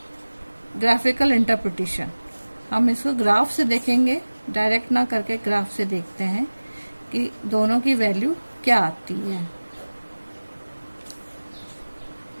graphical interpretation. हम इसको ग्राफ से देखेंगे, डायरेक्ट ना करके ग्राफ से देखते हैं कि दोनों की वैल्यू क्या आती है।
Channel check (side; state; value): both; inverted; correlation -1.00